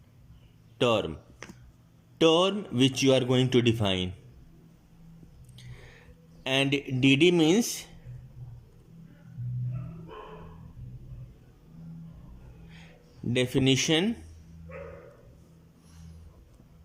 term which you are going to define, and dd means definition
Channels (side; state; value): both; identical; correlation 1.00